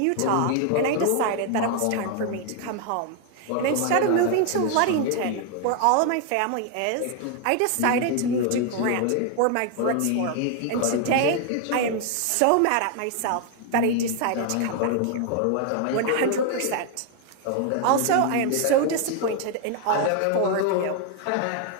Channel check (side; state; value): both; different; correlation 0.00